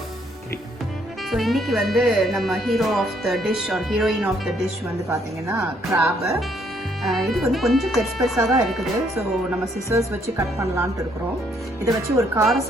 ஸோ இன்னைக்கு நம்ம hero of the dish or heroine of the dish பார்த்தீங்கன்னா கிராபு. இது கொஞ்சம் பெருசாக தான் இருக்குது. ஸோ நம்ம சிசர்ஸ் வச்சு கட் பண்ணலான்ட்டு இருக்கிறோம். இதை வச்சு ஒரு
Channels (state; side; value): normal; both; correlation 0.68